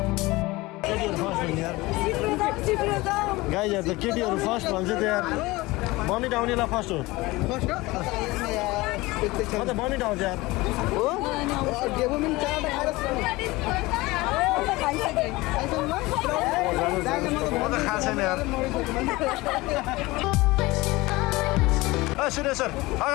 गाइजहरू त केटीहरू फर्स्ट भन्छ त्यहाँ बनिट आउनेलाई फर्स्ट हो बनिट आउँछ यार म त खाएको छैन यार सुरेश सर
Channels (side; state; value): right; quieter; 21.0 dB